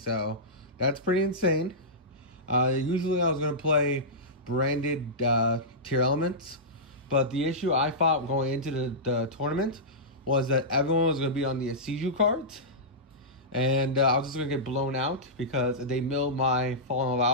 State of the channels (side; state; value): both; normal; correlation -0.14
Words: that's pretty insane. Usually I was going to play branded Tearlaments, but the issue I thought going into the tournament was that everyone was going to be on the Ishiza cards, and I was just going to get blown out because they milled my Fallen of